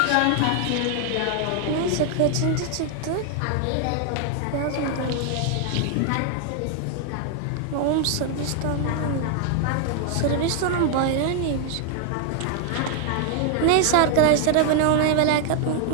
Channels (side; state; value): both; different; correlation 0.00